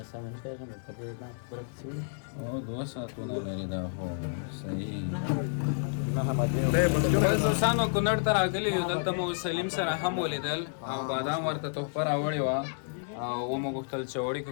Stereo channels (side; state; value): right; silent; digital silence